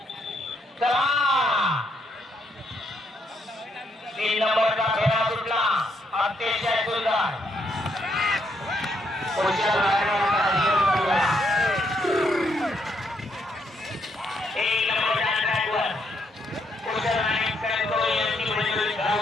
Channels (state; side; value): normal; both; correlation 0.75